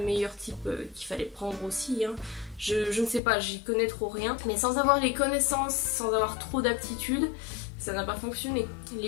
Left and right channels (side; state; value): right; drops out; at 3.2 s